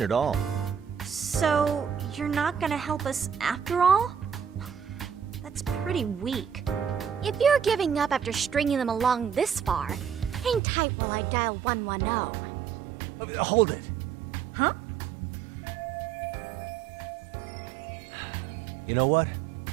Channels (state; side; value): drops out; left; at 10.6 s